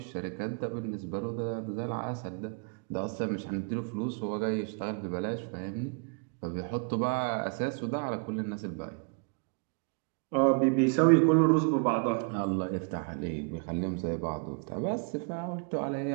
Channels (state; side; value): quieter; left; 39.3 dB